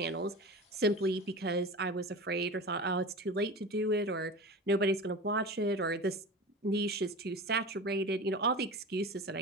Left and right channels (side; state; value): both; normal; correlation 0.31